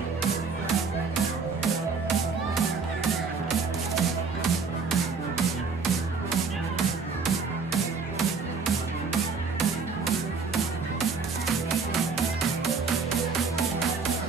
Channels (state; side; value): quieter; left; 4.9 dB